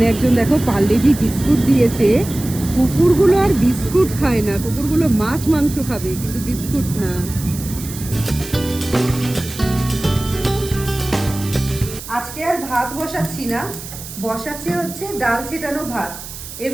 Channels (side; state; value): right; noise; hiss, 12 dB below the sound